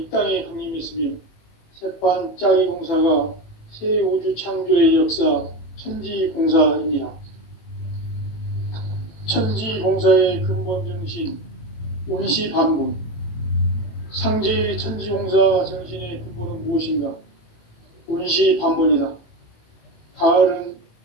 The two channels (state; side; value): late; right; 18 ms